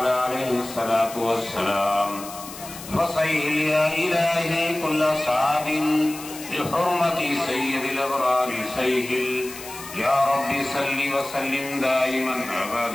عليه الصلاة والسلام فصيح يا إلهي كل صعب بحرمة سيد الأبرار سيهل يا رب صل وسلم دائما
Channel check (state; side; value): noise; left; hiss, 13 dB below the sound